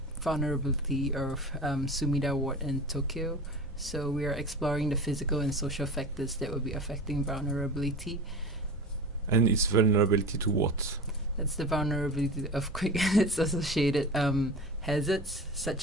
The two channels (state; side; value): normal; both; correlation 0.33